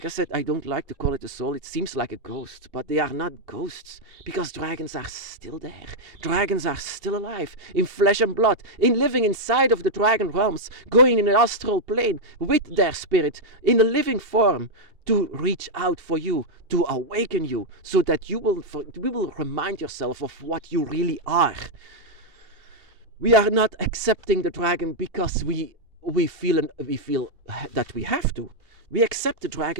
I said, I don't like to call it a soul. It seems like a ghost, but they are not ghosts, because dragons are still there. Dragons are still alive, in flesh and blood, in living inside of the dragon realms, going in an astral plane with their spirit, in a living form, to reach out for you, to awaken you, so that you will remind yourself of what you really are. We are not accepting the dragon because we feel that we have to. We accept the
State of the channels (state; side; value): late; left; 2.7 ms